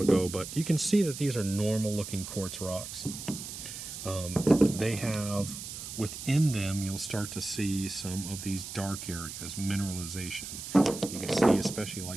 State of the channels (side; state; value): right; noise; hiss, 9 dB below the sound